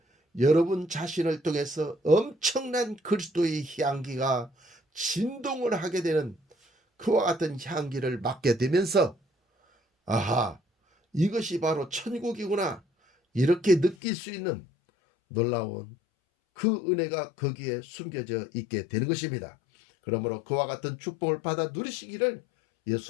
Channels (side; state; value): right; drops out; at 14.0 s